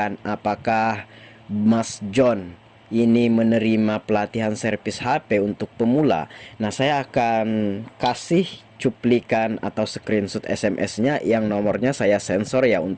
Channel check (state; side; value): identical; both; correlation 1.00